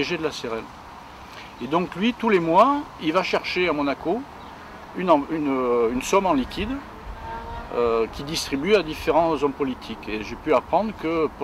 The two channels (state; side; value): identical; both; correlation 1.00